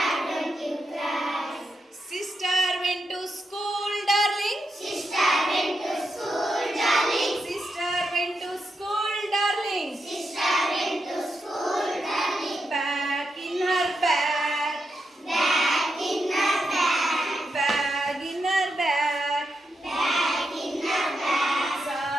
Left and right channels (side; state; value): both; normal; correlation 0.85